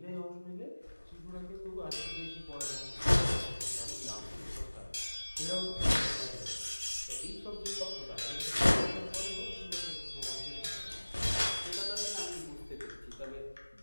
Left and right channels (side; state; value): both; inverted; correlation -1.00